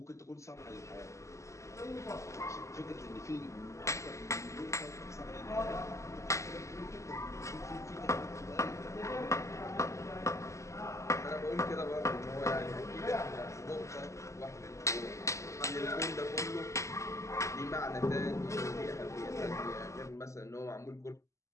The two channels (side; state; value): right; late; 0.15 ms